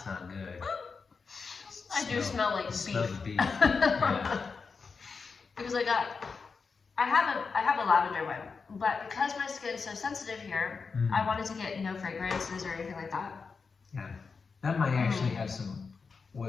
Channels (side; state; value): right; quieter; 5.0 dB